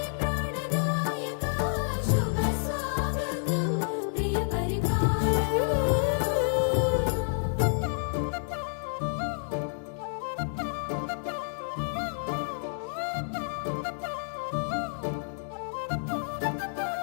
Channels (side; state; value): right; silent; digital silence